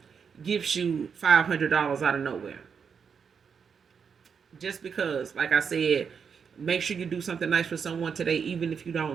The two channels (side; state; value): left; quieter; 6.5 dB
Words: gives you $500 out of nowhere, just because, like I said, make sure you do something nice for someone today, even if you